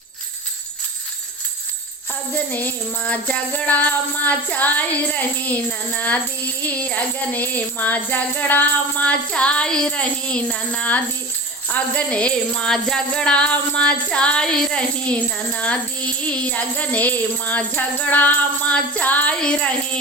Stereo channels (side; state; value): both; normal; correlation 0.34